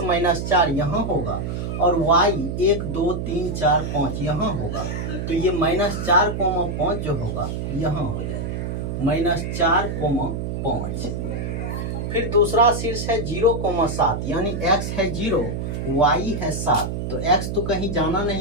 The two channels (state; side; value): noise; right; hum, 3 dB below the sound